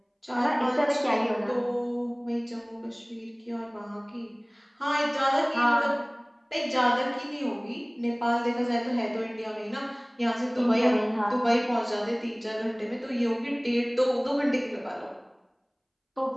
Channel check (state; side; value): identical; both; correlation 1.00